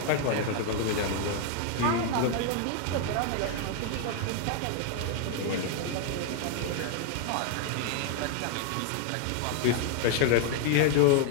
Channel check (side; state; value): both; different; correlation 0.00